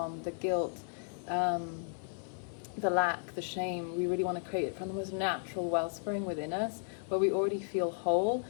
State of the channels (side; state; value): right; silent; 55 dB below the other